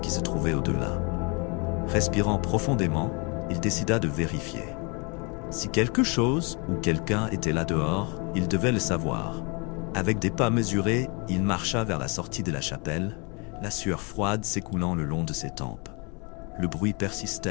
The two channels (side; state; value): right; quieter; 32.1 dB